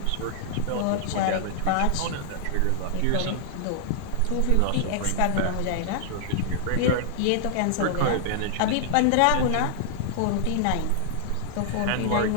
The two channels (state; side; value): different; both; correlation -0.01